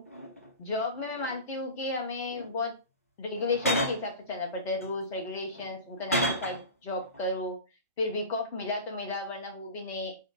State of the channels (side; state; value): both; inverted; correlation -0.31